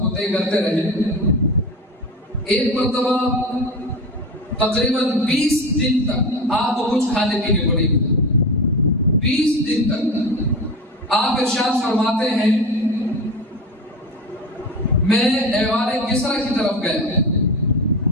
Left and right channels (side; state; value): both; normal; correlation 0.26